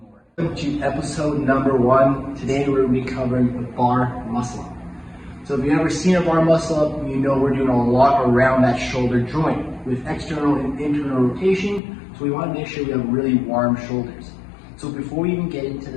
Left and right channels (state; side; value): drops out; right; at 11.8 s